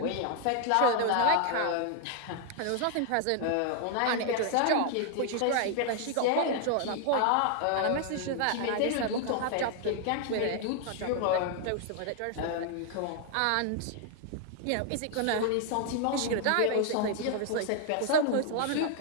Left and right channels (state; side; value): different; both; correlation 0.00